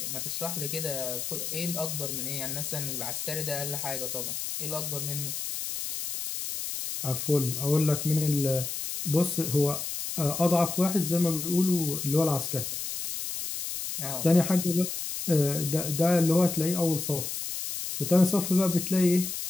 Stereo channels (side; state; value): left; noise; hiss, 5 dB below the sound